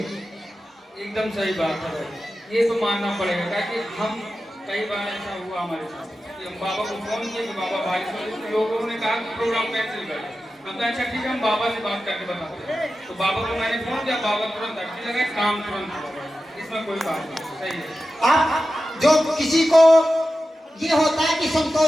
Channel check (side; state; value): both; normal; correlation 0.93